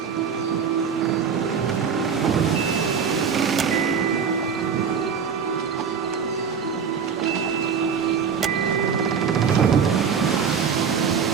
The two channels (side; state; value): left; quieter; 6.7 dB